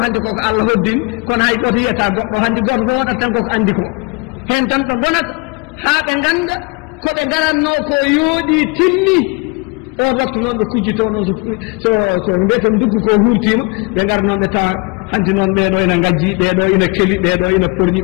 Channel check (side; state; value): right; quieter; 30.3 dB